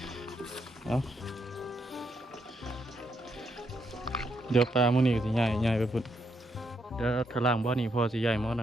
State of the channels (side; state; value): both; normal; correlation 0.77